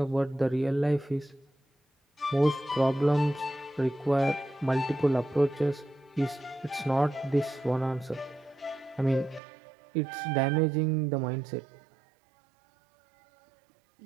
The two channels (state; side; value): drops out; left; at 9.4 s